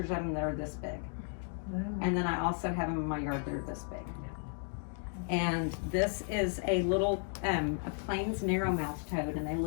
of them that are this big. And then I also have them in my yard that are this big. And this is a little, a plains narrowmouth toad, and they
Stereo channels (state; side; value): silent; right; 55 dB below the other